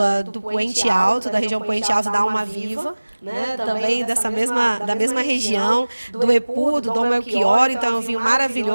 do Poente Alto, da região Poente Alto da Alma Viva, né, também da mesma região, do Epu, do Dom Melchior. Então é um vinho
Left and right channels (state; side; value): inverted; both; correlation -1.00